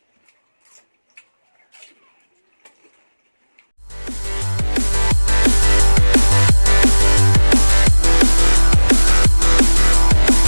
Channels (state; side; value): inverted; both; correlation -1.00